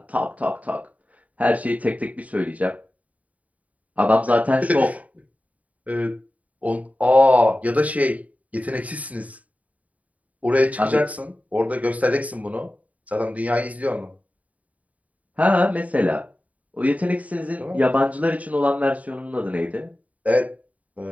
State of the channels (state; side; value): late; left; 0.070 ms